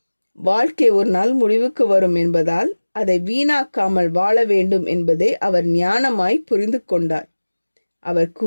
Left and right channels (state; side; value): inverted; both; correlation -1.00